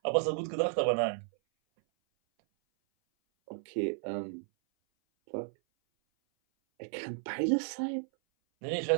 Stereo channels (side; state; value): left; silent; 56 dB below the other